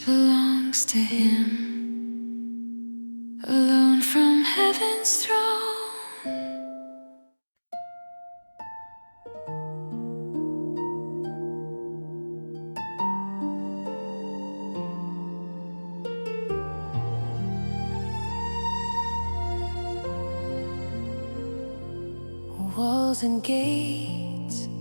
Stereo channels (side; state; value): both; inverted; correlation -1.00